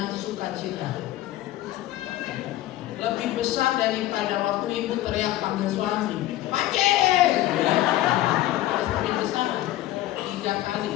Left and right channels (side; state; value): right; quieter; 15.2 dB